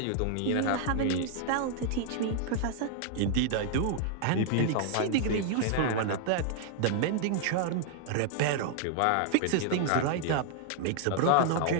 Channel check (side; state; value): both; different; correlation 0.00